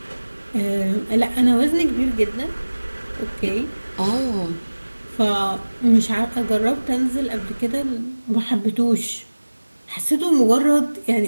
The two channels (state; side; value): inverted; both; correlation -1.00